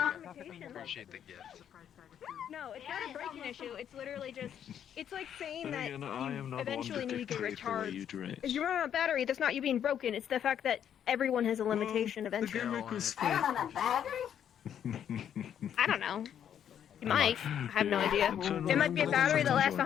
Appreciate the gift. No, it's not a breaking issue. It's literally just, it's like saying that you eventually need to get recharged. If you run out of battery, that's not you being broken. It's the fact that everyone has a limitation eventually. I don't have a battery? I don't know. You might. I have no idea. It might be a battery that lasts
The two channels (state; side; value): quieter; right; 9.3 dB